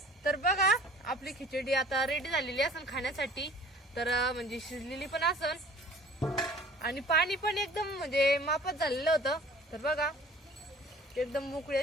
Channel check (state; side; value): normal; both; correlation 0.49